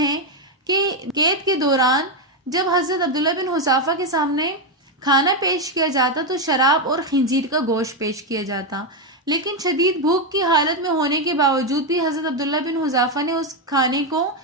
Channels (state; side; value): normal; both; correlation 0.06